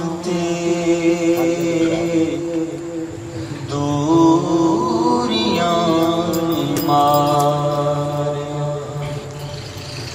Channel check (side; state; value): both; identical; correlation 1.00